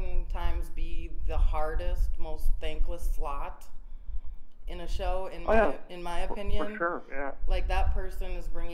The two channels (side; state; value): both; identical; correlation 1.00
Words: be the hardest, most thankless slot in a show, in my opinion. For sure, yeah. Like, that person is